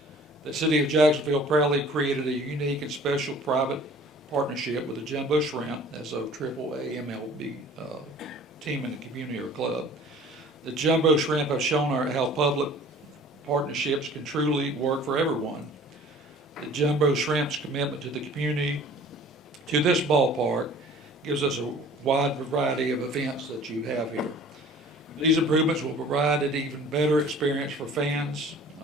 The City of Jacksonville proudly created a unique and special private partnership with the Jumbo Shrimp as a AAA MLB team in the community or club. The Jumbo Shrimp have shown how public partnerships can truly work for everyone. The Jumbo Shrimp's commitment to the community, to this ballpark, gives us a wide variety of events that you have here. These improvements will provide an even better experience for fans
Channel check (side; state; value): both; normal; correlation 0.48